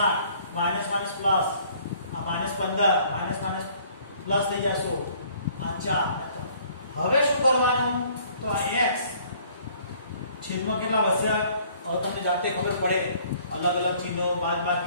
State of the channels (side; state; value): both; inverted; correlation -0.58